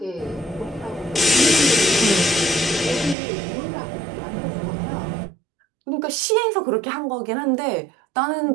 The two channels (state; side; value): drops out; left; at 3.2 s